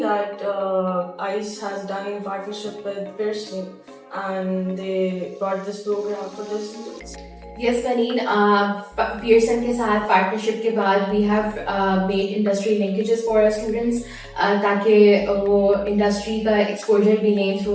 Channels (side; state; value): both; identical; correlation 1.00